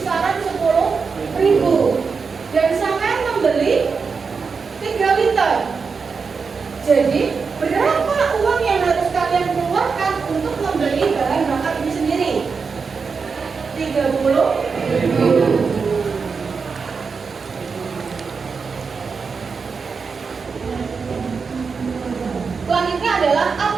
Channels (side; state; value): left; quieter; 5.2 dB